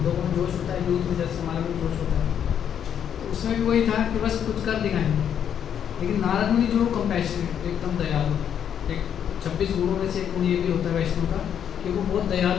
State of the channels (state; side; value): quieter; right; 8.9 dB